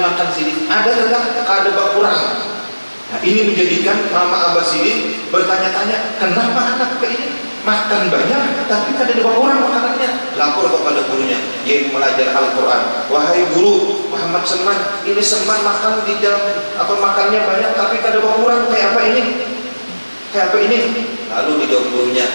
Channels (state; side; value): inverted; both; correlation -1.00